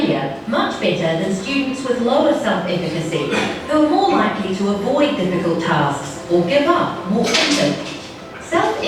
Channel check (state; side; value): identical; both; correlation 1.00